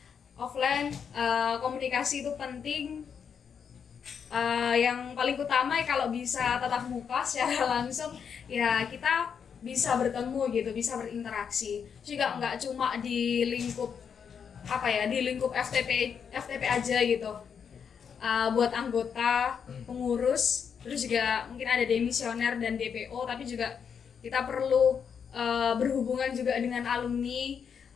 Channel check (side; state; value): right; quieter; 7.0 dB